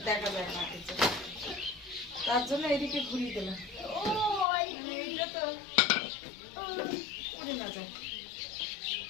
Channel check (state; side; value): drops out; right; at 4.5 s